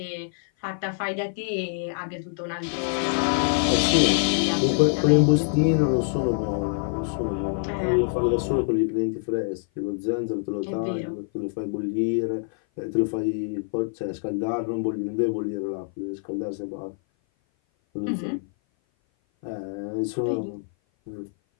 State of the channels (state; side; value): silent; right; 57 dB below the other